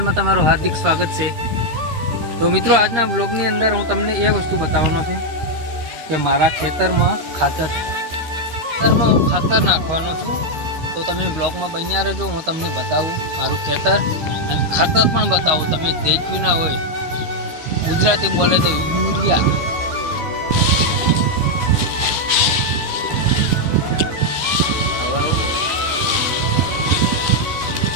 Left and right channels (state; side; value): late; left; 13 ms